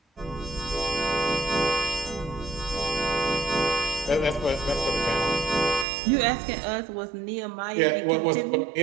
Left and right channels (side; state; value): left; drops out; at 5.9 s